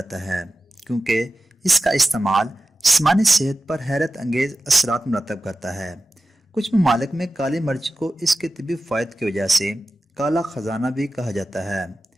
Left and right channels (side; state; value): both; normal; correlation 0.94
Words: ہے کیونکہ اس کا استعمال جسمانی صحت پر حیرت انگیز اثرات مرتب کرتا ہے۔ کچھ ممالک میں کالی مرچ کو اس کے طبی فوائد کی وجہ سے کالا خزانہ بھی کہا جاتا ہے۔